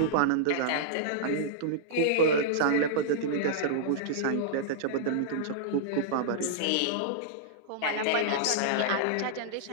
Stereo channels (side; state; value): both; different; correlation -0.02